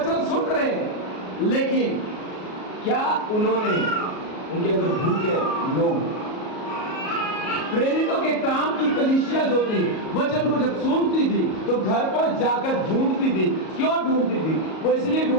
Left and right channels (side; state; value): right; late; 37 ms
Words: सुन रहे हैं, लेकिन क्या उन्होंने उनके अंदर भूख है? नो। प्रेरितों के काम की कलीसिया जो थी, वचन को जब सुनती थी तो घर पर जाकर ढूंढती थी। क्यों ढूंढती थी? वो इसलिए